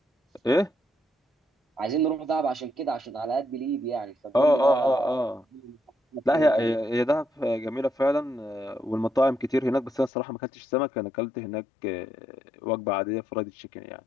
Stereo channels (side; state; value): right; drops out; at 10.1 s